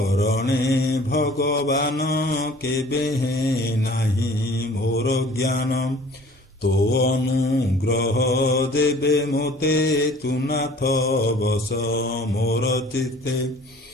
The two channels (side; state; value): both; normal; correlation 0.50